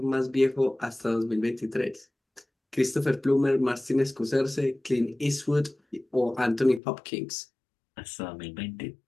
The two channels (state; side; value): drops out; right; at 6.8 s